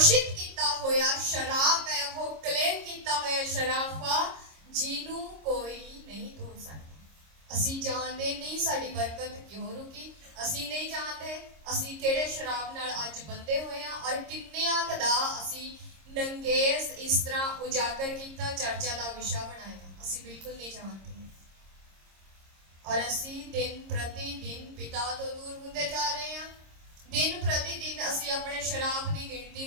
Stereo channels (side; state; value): left; late; 26 ms